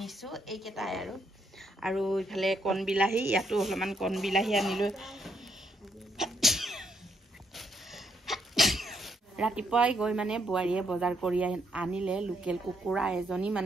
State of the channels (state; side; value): normal; both; correlation 0.74